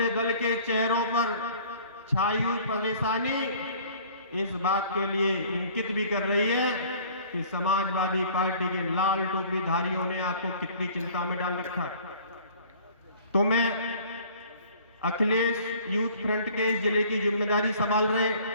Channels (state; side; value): inverted; both; correlation -0.51